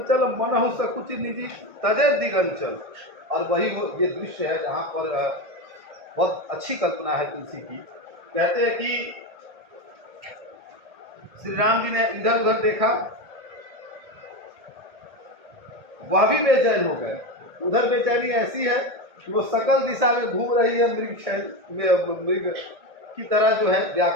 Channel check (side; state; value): left; late; 1.6 ms